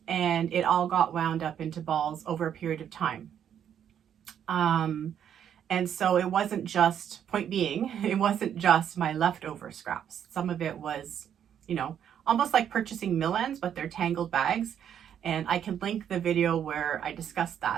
and it all got wound up into balls over a period of time. And so it wasn't just, point being, it wasn't just my leftover scraps. Some of it was, you know, almost like purchasing mill ends, but they're tangled bags. And I can link the video where I discussed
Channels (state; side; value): quieter; left; 9.2 dB